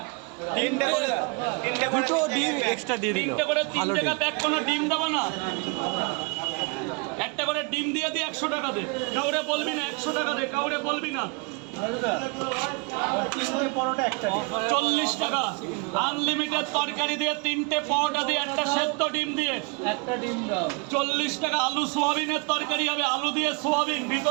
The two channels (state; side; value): quieter; left; 31.5 dB